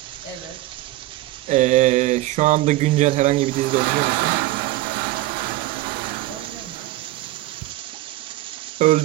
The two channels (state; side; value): quieter; left; 17.0 dB